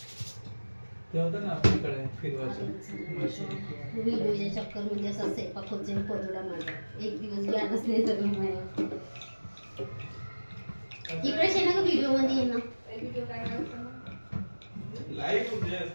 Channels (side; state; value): both; inverted; correlation -1.00